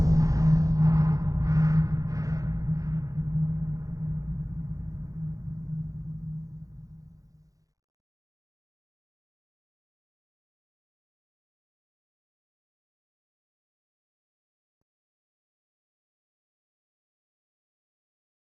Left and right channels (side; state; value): left; late; 0.17 ms